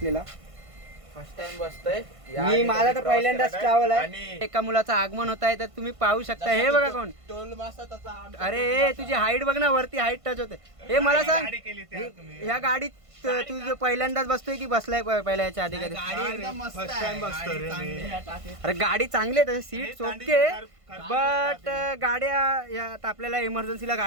फर्स्ट टाइम बसतोय मी. माझा तर पहिल्यांदाच ट्रॅव्हल आहे. एका मुलाचं आगमन होत आहे तर तुम्ही पाहू शकता. हे बघा कोण? टोल मासा तसा. अरे तुझी हाईट बघ ना, वरती हाईट टच होते. हे मला सांग, ह्या गाडीत तू पहिल्यांदाच बसतोय की बसलाय पहिल्या याच्या आधी कधी? अरे गाडी चांगली आहे, सीट ओके, बट गाड्या आता आपल्याला इमर्जन्सीला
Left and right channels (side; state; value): left; late; 1.5 ms